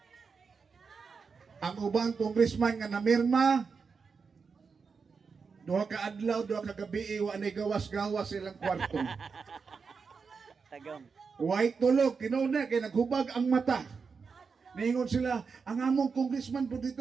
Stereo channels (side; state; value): left; quieter; 5.3 dB